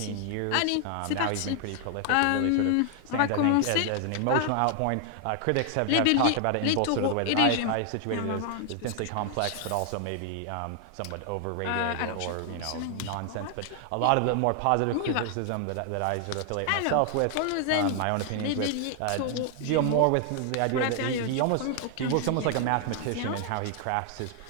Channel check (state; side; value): different; both; correlation 0.00